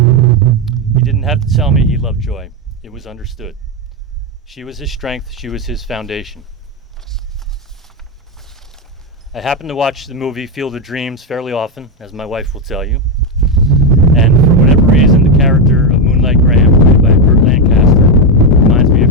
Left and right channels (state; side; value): normal; both; correlation 0.07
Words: He didn't have to tell me he loved Joy. It was understood. She was his strength. She was his foundation. I happen to watch the movie Field of Dreams fairly often, as my wife will tell you. And for whatever reason, the character of Moonlight Graham, played by Burt Lancaster, reminds me